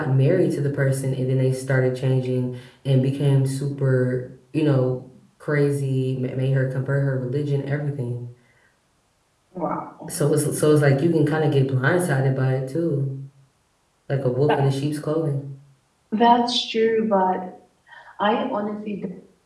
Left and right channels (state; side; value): identical; both; correlation 1.00